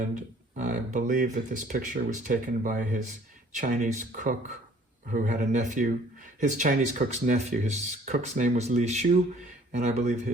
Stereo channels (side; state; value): both; normal; correlation 0.55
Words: I believe that this picture was taken by his Chinese cook who had a nephew, his Chinese cook's nephew. His cook's name was Li Shu, and I believe